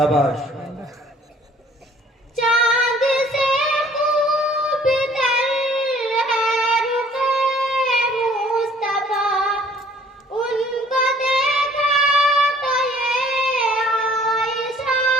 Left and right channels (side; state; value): both; normal; correlation 0.56